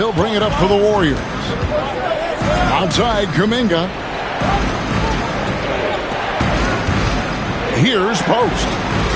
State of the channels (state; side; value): identical; both; correlation 1.00